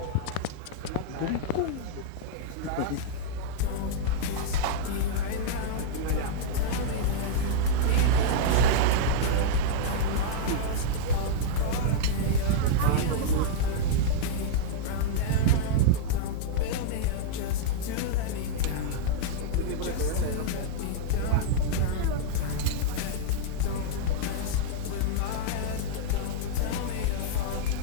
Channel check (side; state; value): both; different; correlation -0.02